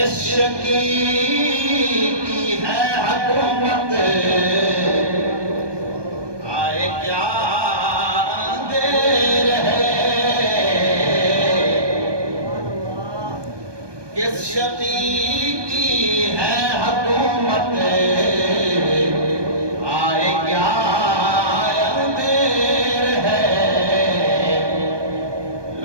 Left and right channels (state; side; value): late; left; 1.2 ms